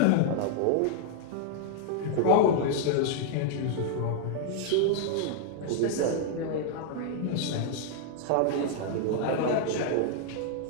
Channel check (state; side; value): different; both; correlation 0.00